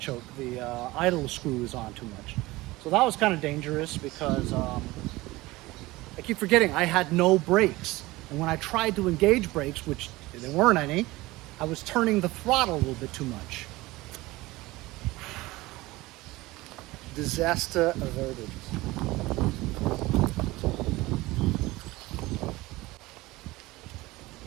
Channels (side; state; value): left; quieter; 19.9 dB